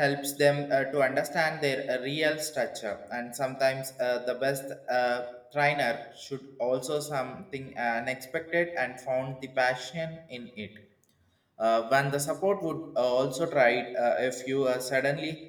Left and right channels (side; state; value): both; identical; correlation 1.00